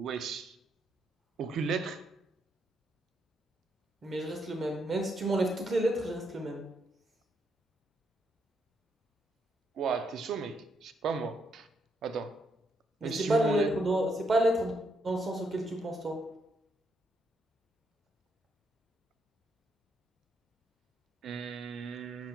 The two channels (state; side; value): normal; both; correlation 0.77